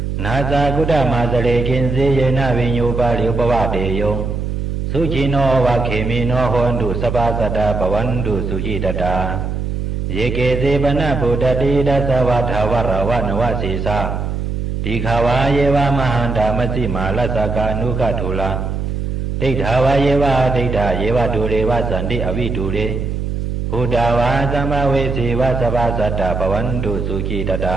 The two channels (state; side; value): noise; right; hum, 3 dB below the sound